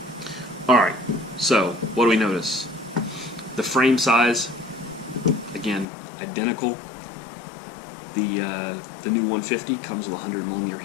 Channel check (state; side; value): drops out; right; at 5.9 s